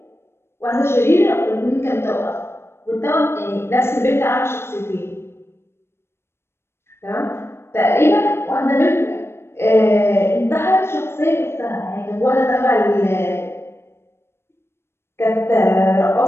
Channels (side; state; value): right; late; 0.12 ms